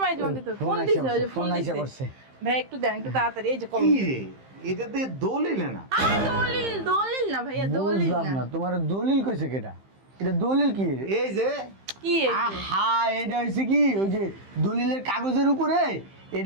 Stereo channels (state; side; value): late; left; 15 ms